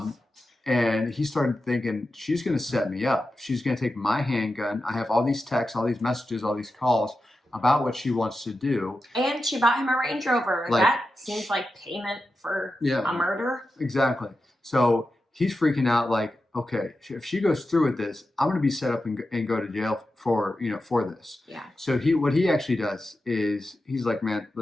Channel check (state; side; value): normal; both; correlation 0.91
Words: And he started thinking, she's going to set me up. She's going to take my handgun. I have all these texts, all these messages, all these calls about what she wants to do. And she bought him a Range Rover. That seems like payment for a murder. Exactly. So he's freaking out like, okay, if she goes through with this, I'm going to be set up and go to jail for this. Yeah. So what he actually does is he's like, man,